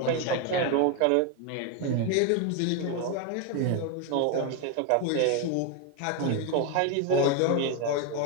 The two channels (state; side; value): different; both; correlation 0.01